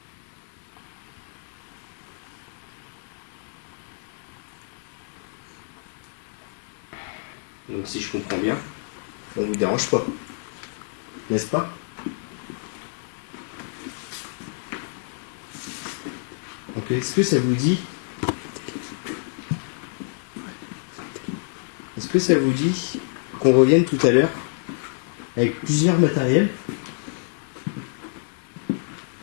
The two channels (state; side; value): silent; right; 60 dB below the other